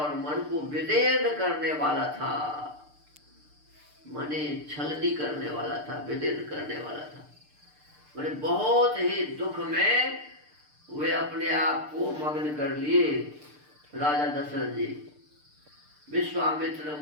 मन को विदीर्ण करने वाला था, मने छलनी करने वाला था, विदीर्ण करने वाला था। मैंने बहुत ही दुख में वे अपने आप को मग्न कर लिए राजा दशरथ जी। विश्वामित्र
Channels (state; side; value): late; left; 6.7 ms